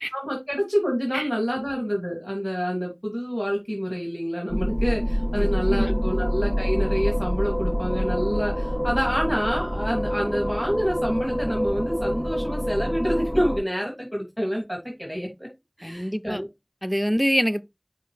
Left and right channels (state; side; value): identical; both; correlation 1.00